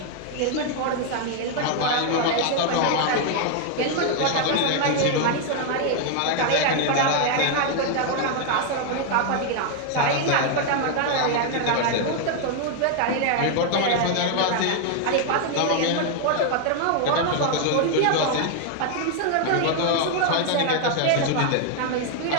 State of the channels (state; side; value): different; both; correlation 0.00